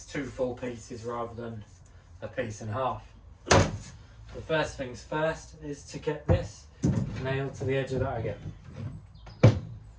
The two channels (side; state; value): both; identical; correlation 1.00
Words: two full pieces rather than a piece and a half. The first things first is to get this nailed to the edge of that again.